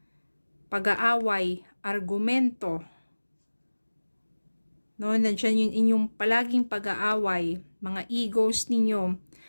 pag-aaway, argumento. No, nandiyan yung inyong palaging pag-aaway, mga egos ninyo.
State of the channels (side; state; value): both; inverted; correlation -1.00